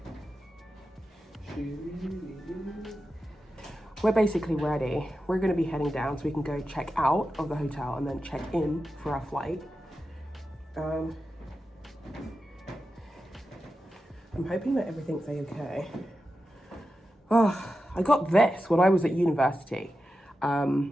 We're basically ready. We're going to be heading down so we can go check out of the hotel and then check in for our flight. I'm hoping that everything's okay. Oh, I got this when I was at university.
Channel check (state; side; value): normal; both; correlation 0.91